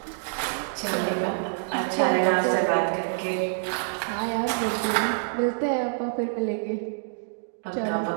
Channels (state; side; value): silent; left; digital silence